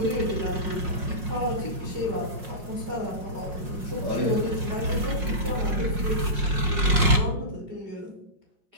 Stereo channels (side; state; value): left; late; 5.6 ms